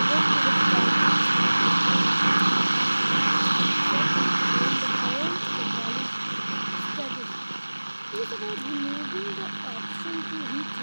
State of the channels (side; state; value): both; inverted; correlation -1.00